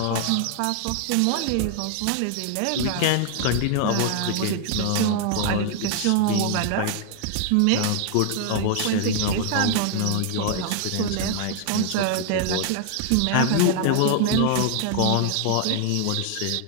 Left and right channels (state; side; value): different; both; correlation 0.00